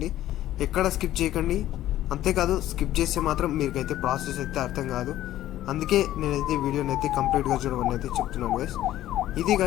ఎక్కడ స్కిప్ చేయకండి. అంతేకాదు స్కిప్ చేస్తే మాత్రం మీకైతే ప్రాసెస్ అయితే అర్థం కాదు. అందుకే నేనైతే వీడియోని అయితే కంప్లీట్గా చూడమని అయితే చెప్తున్నాను గైస్. ఇది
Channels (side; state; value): right; quieter; 13.6 dB